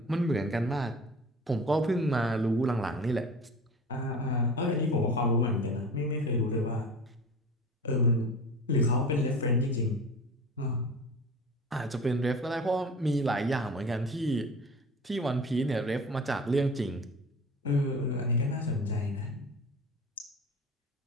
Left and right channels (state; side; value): normal; both; correlation 0.38